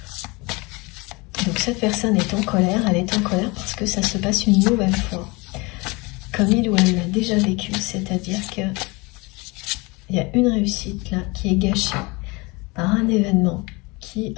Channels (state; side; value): quieter; right; 25.8 dB